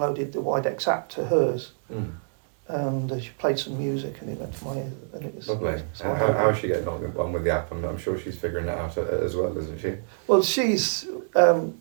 the Widex app to hers, and she played some music, and it went to my ear, and it was lovely. so How is she getting on with the app? I'm sure she's figuring it out as well, isn't she? Well, she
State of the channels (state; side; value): silent; left; digital silence